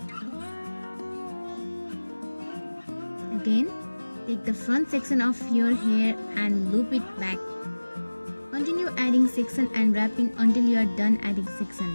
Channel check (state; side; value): inverted; both; correlation -1.00